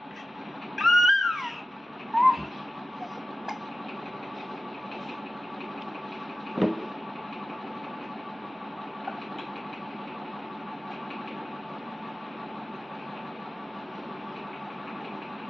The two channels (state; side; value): normal; both; correlation 0.95